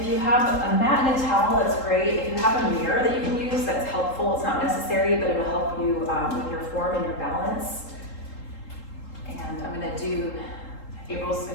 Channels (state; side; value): late; right; 3.8 ms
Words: you have a mat and a towel, that's great. If you have a mirror that you can use, that's helpful. It's not necessary, but it'll help you with your form and your balance. And I'm gonna do, April's